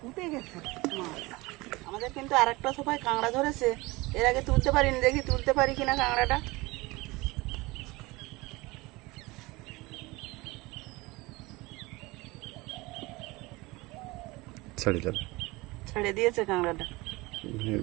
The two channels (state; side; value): quieter; left; 22.3 dB